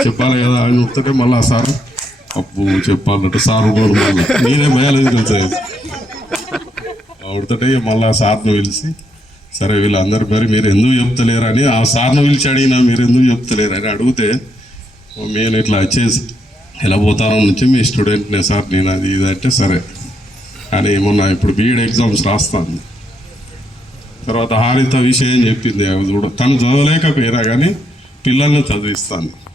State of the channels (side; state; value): both; normal; correlation 0.77